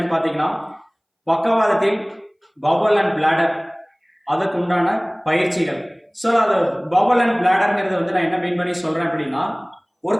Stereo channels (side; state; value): both; identical; correlation 1.00